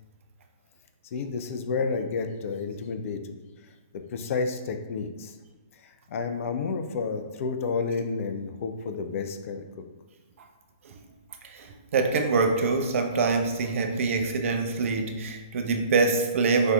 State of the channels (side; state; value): both; inverted; correlation -0.47